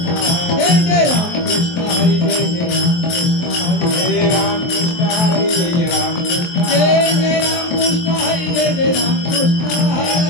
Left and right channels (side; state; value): right; late; 23 ms